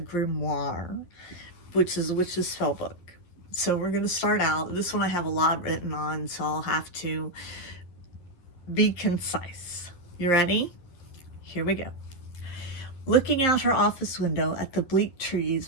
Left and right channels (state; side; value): late; right; 11 ms